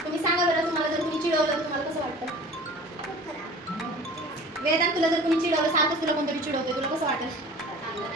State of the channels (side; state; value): both; normal; correlation 0.43